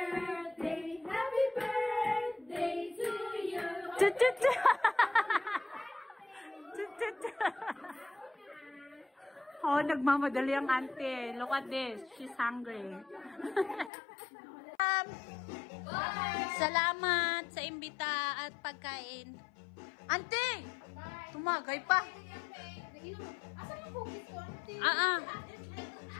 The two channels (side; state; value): right; drops out; at 13.9 s